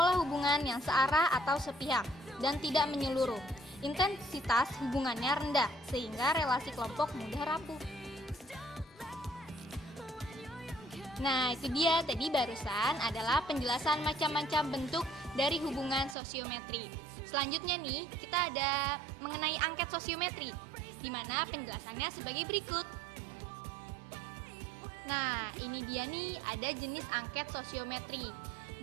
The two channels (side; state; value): left; drops out; at 16.2 s